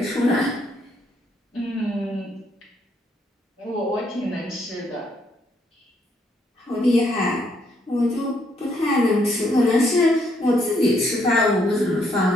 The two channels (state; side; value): normal; both; correlation 0.72